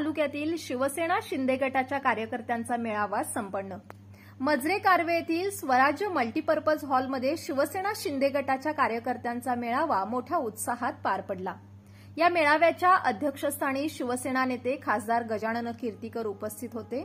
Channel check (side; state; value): both; identical; correlation 1.00